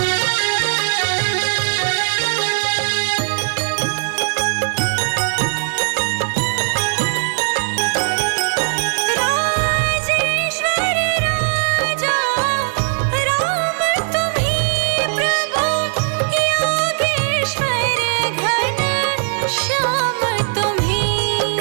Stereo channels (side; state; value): left; silent; digital silence